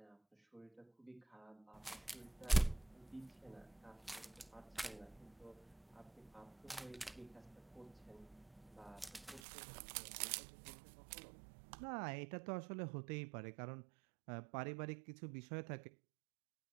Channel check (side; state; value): left; drops out; at 9.4 s